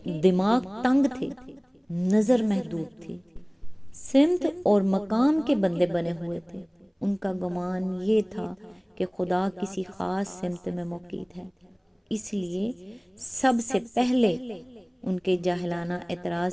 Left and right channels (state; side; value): identical; both; correlation 1.00